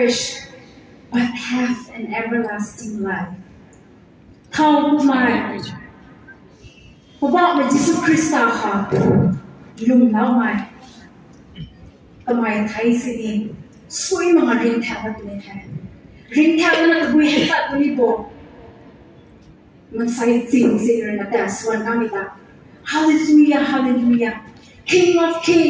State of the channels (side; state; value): both; identical; correlation 1.00